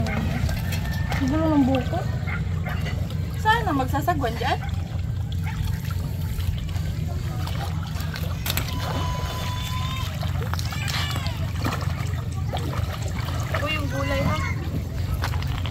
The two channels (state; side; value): identical; both; correlation 1.00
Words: mga. Gulo ng buko. Sana magsasagwan dyan? Uy, yung gulay ha.